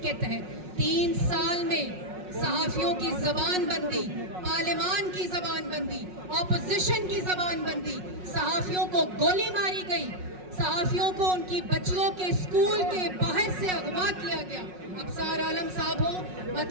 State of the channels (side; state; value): left; late; 5.5 ms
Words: تحت 3 سال میں صحافیوں کی زبان بندی، پارلیمان کی زبان بندی، اپوزیشن کی زبان بندی، صحافیوں کو گولی ماری گئی، صحافیوں کو ان کی بچیوں کے اسکول کے باہر سے اغوا کیا گیا. ابصار عالم صاحب ہو،